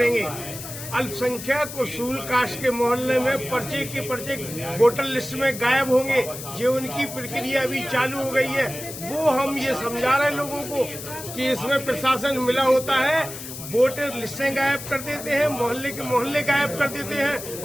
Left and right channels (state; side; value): noise; left; hiss, 10 dB below the sound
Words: अल्पसंख्यक उसूल कास्ट के मोहल्ले में पर्चे के पर्चे वोटर लिस्ट में गायब होंगे। जो उनकी प्रक्रिया अभी चालू हो गई है, वो हम ये समझा रहे हैं लोगों को कि इसमें प्रशासन मिला होता है, वोटर लिस्टें गायब कर देते हैं, मोहल्ले के मोहल्ले गायब कर देते हैं